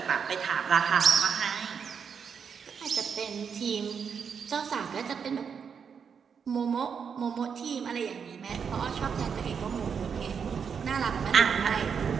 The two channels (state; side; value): quieter; left; 6.7 dB